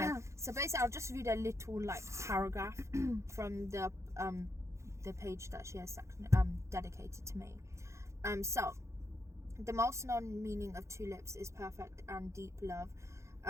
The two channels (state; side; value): late; left; 0.14 ms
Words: So basically, I'll just read a little like paragraph from the page that she has dedicated to me. So the most known meaning of tulips is perfect and deep love.